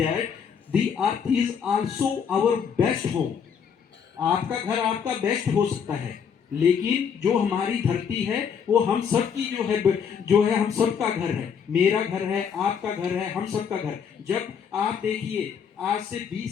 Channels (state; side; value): quieter; right; 7.1 dB